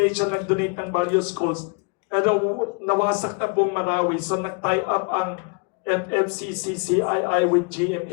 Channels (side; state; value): right; quieter; 33.4 dB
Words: nag-donate ng various schools. Pero nawasak na buong Marawi, so nag-tie up ang FFCCCII with